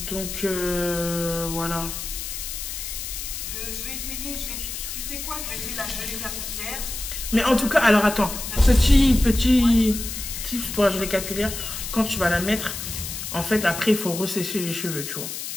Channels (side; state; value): left; noise; hiss, 7 dB below the sound